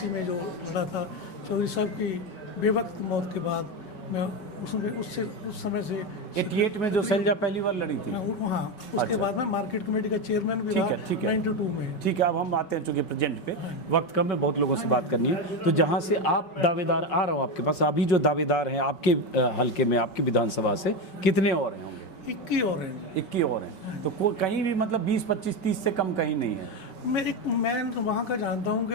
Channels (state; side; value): late; right; 5.3 ms